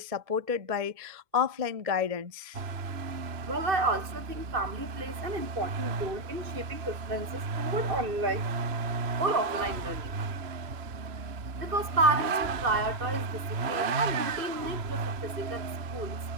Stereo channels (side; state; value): left; late; 2.6 ms